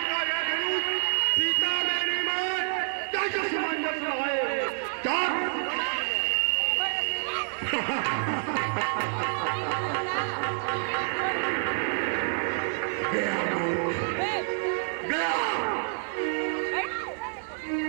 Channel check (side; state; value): left; silent; 59 dB below the other